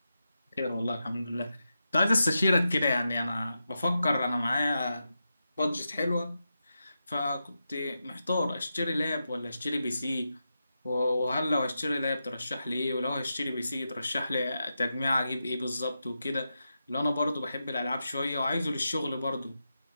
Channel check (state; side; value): inverted; both; correlation -0.89